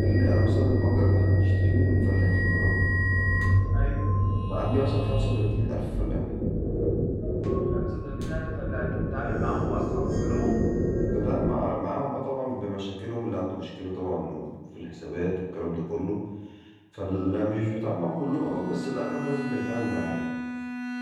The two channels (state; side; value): identical; both; correlation 1.00